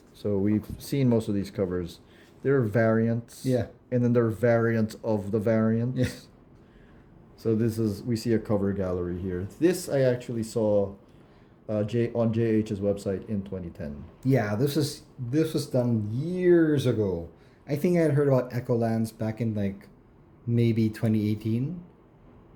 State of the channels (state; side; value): identical; both; correlation 1.00